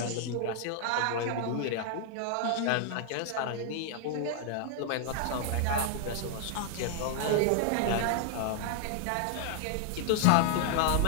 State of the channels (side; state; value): both; different; correlation -0.01